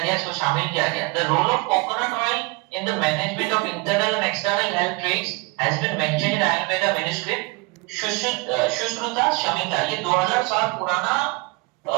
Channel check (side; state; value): left; quieter; 26.5 dB